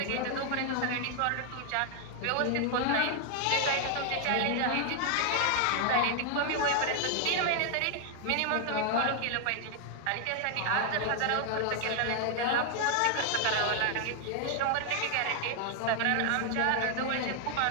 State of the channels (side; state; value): both; different; correlation 0.00